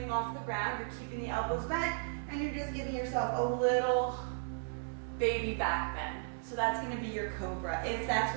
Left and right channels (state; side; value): silent; left; 54 dB below the other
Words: off the ground, you're keeping the elbows bent, and you're just giving yourself a little baby back bend. So that's going to be your cobra, if that's